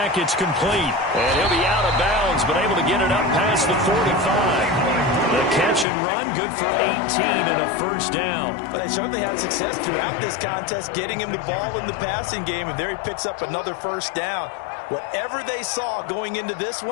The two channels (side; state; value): right; drops out; at 5.9 s